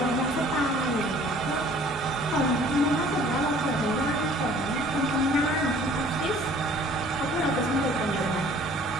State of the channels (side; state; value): both; normal; correlation 0.53